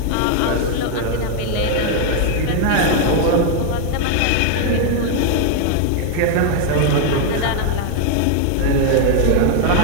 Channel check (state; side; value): different; both; correlation 0.00